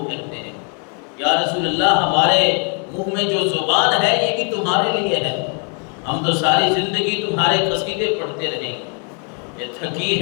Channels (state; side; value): quieter; right; 38.6 dB